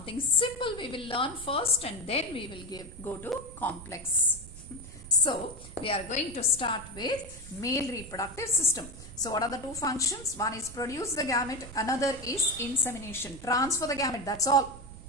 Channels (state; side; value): noise; right; rumble, 15 dB below the sound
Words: simple we will learn first and then we will go to complex. So we are going to start with male reproductive system. So what are the two functions? One is produce the gamete, another is insemination. Transfer the gamete, that's all,